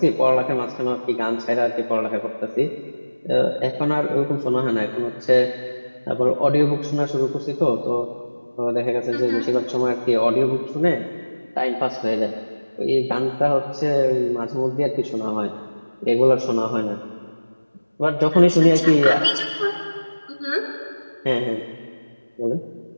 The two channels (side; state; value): both; inverted; correlation -1.00